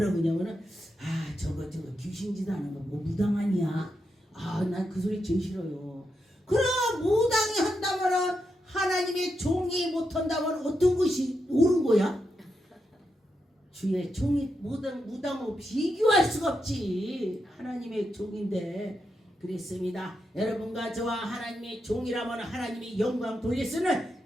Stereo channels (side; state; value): both; normal; correlation 0.85